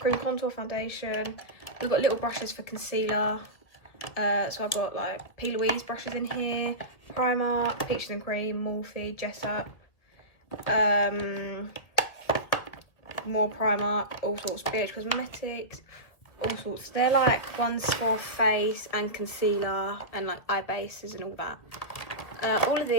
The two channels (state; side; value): late; right; 2.0 ms